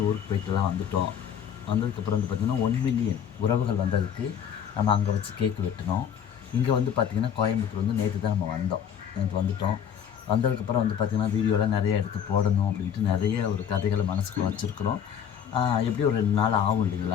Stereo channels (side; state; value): right; quieter; 8.5 dB